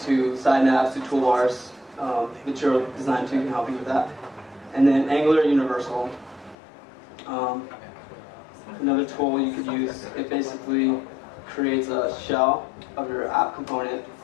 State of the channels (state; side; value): drops out; right; at 6.6 s